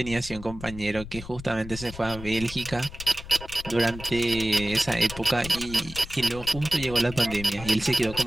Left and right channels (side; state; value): left; noise; rumble, 13 dB below the sound